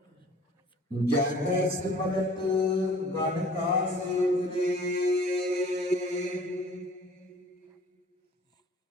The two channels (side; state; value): both; normal; correlation 0.50